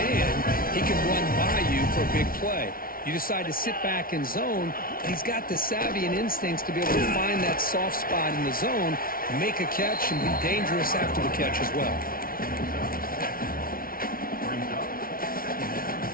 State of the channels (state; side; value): late; right; 0.43 ms